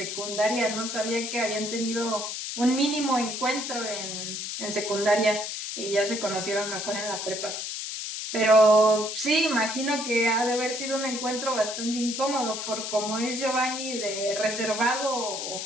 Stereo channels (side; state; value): left; noise; hiss, 5 dB below the sound